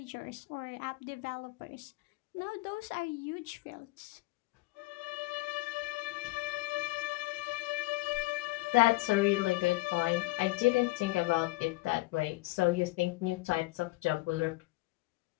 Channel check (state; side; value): quieter; right; 21.2 dB